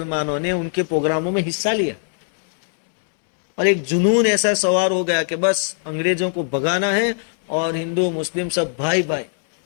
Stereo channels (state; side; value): silent; right; 66 dB below the other